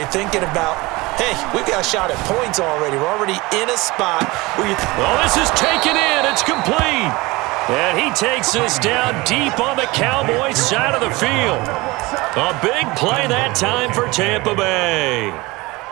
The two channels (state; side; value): quieter; left; 22.4 dB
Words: thinking about, hey, we've got a shot at points already. We're already in a spot where you... Well, this is taken in. It's complete. And he takes this down deep on the Cowboys side of the field. A big play that time for Tampa Bay.